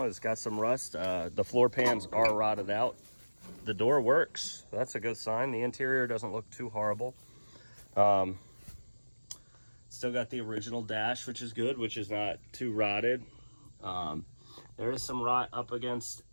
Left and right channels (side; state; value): both; inverted; correlation -1.00